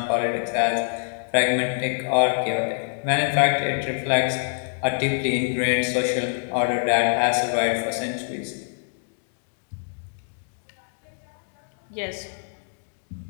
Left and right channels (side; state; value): right; silent; digital silence